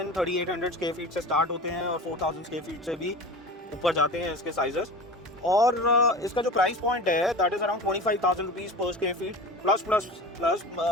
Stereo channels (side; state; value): both; normal; correlation 0.34